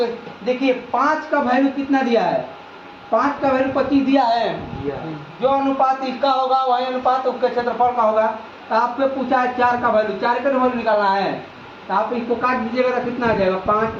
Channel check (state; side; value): identical; both; correlation 1.00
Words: देखिए 5 का वैल्यू कितना दिया है, 5 का वैल्यू 25 दिया है। जो अनुपात इसका होगा वही अनुपात उसके क्षेत्रफल का होगा। तो आपसे पूछा है 4 का वैल्यू, 4 का वैल्यू निकालना है, तो आप इसको काट दीजिएगा तो कितना आ जाएगा